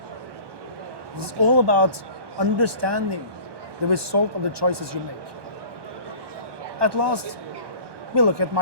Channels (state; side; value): late; left; 1.2 ms